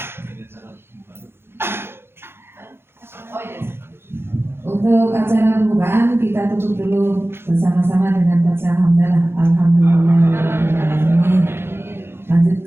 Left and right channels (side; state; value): left; late; 0.11 ms